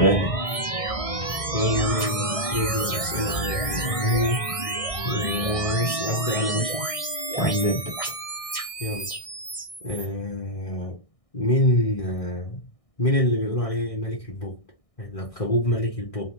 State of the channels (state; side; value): late; right; 1.6 ms